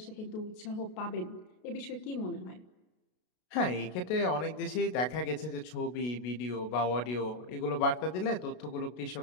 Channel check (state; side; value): late; right; 33 ms